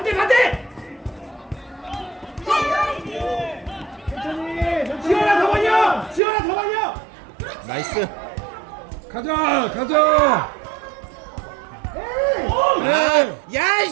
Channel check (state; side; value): drops out; left; at 6.2 s